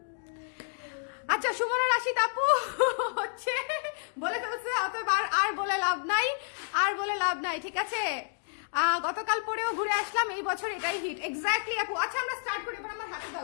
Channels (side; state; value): right; silent; digital silence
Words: আচ্ছা, সুমনা রাশিদ আপু হচ্ছে বলে ফেলছে, আর বলে লাভ নাই, ঠিক আছে? গতকাল পরেও ঘুরে আসলাম, এই বছর এটাই হিট। এক্স্যাক্টলি আপু। আচ্ছা, আমরা স্টার্ট করি, এবার আমার হাতে